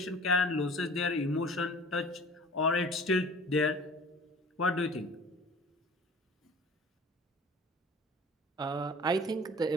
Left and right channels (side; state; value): both; normal; correlation 0.44